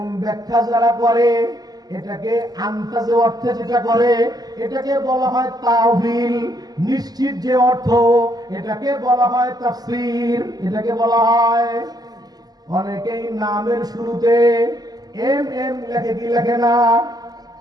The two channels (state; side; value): late; left; 0.19 ms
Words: ব্যাখ্যা যারা করে, এটাকে আন্তাজে অর্থে যেটা করে, এটাকে বলা হয় তাওহীল। নিশ্চিত যে অর্থ, এটাকে বলা হয় তাফসীর। এটাকে বলা হয়, অনেকেই নামের শুরুতে এম এম লেখে কি লেখে না,